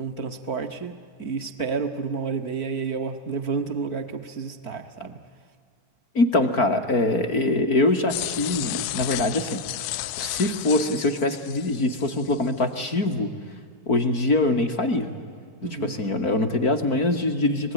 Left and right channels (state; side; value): late; right; 4.5 ms